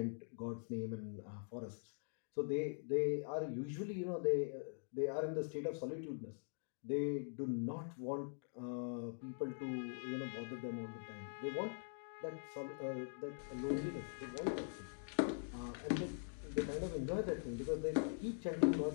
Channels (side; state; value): right; silent; digital silence